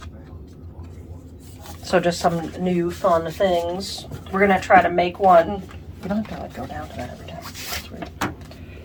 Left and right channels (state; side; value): identical; both; correlation 1.00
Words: So just some new fun things. We're gonna try to make one. You don't have to like go down to that every time. That's weird.